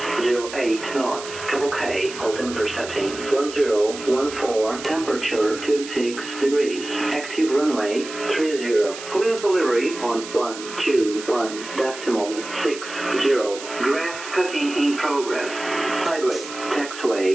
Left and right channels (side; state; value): right; noise; hiss, 12 dB below the sound